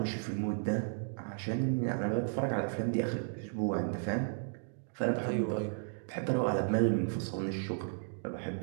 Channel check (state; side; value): silent; left; digital silence